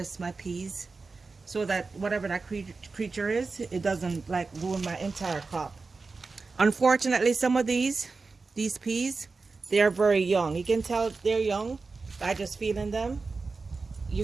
my peas so that whatever that creature is, it doesn't like ruin my entire crop. Unfortunately, some of these peas, they are very young. You can tell they're young by just feeling them. You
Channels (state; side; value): quieter; left; 4.1 dB